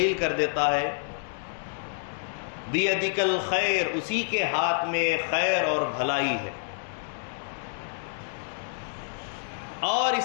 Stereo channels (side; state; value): right; silent; digital silence